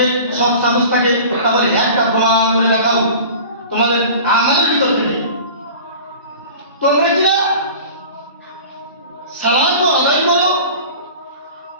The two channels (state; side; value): inverted; both; correlation -0.39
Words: সব সাহস থাকে, তাহলে একটা প্রমাণ করে দেখাও তোমাদের আমাদের ভিতর থেকে। তোমরা কিনা সালাত আদায় করো